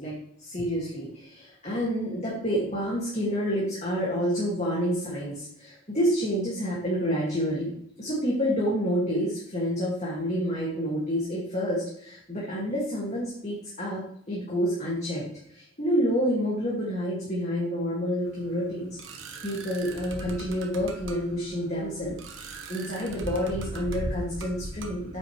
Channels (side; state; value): both; normal; correlation 0.46